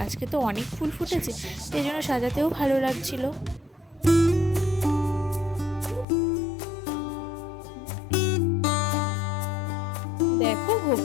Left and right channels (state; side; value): drops out; right; at 6.1 s